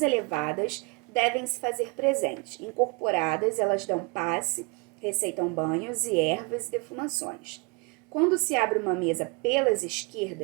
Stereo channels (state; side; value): quieter; left; 29.5 dB